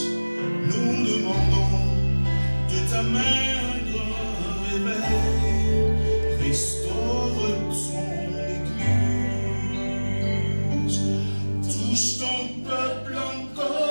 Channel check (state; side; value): inverted; both; correlation -1.00